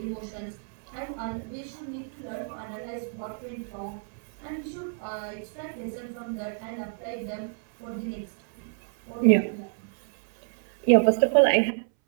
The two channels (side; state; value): left; silent; 59 dB below the other